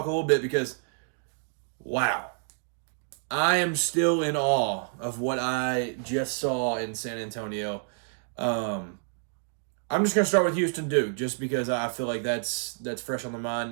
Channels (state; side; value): silent; left; digital silence